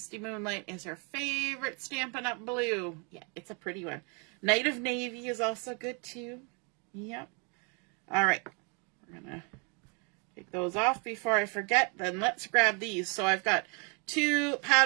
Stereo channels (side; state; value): left; quieter; 34.7 dB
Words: Moonlight is her favorite Stampin' Up! Blue. Yeah, it's a pretty one. Night of Navy is also good too. Yep. All right. We're going to take those off before I forget. Then let's grab these. So I've got 2